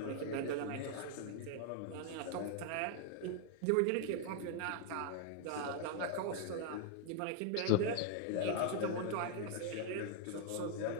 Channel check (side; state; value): both; different; correlation 0.00